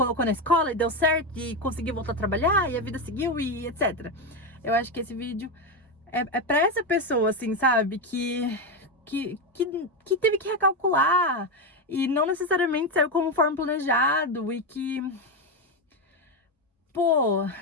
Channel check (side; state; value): both; normal; correlation 0.11